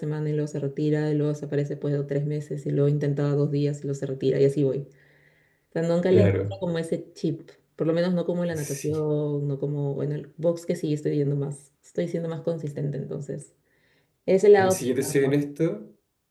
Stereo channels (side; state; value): both; identical; correlation 1.00